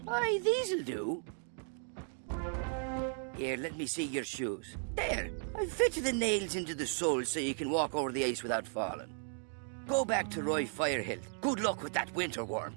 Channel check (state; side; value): silent; left; 54 dB below the other